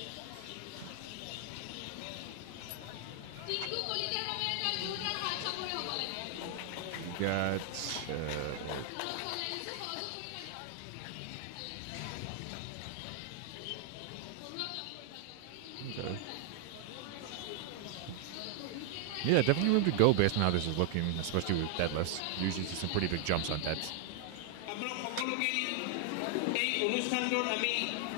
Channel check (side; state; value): both; different; correlation 0.00